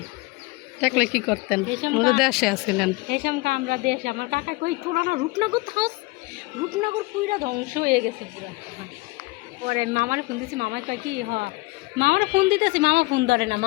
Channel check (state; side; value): quieter; right; 23.0 dB